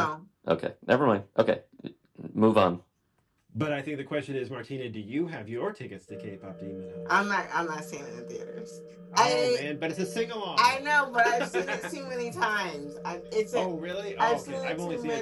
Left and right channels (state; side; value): identical; both; correlation 1.00